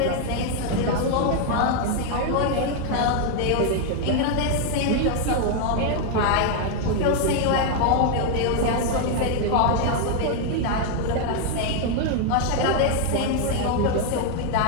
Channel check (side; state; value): both; different; correlation 0.00